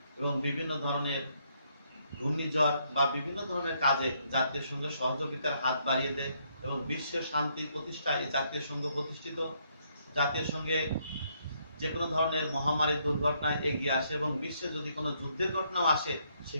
এবং বিভিন্ন ধরনের ঘূর্ণিঝড় বা বিভিন্ন ধরনের কাজে জাতীয় সংঘের সহযোগিতার হাত বাড়িয়ে দেয়, এবং বিশ্বের শান্তি প্রতিষ্ঠায় এই জাতীয় সংঘ প্রতিষ্ঠিত। জাতীয় সংঘে যে কোনো ধরনের মহামারী দুর্ঘটনায় এগিয়ে আসে, এবং বিশ্বে যদি কোনো যুদ্ধের ঘটনাও আসে,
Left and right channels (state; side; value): inverted; both; correlation -0.73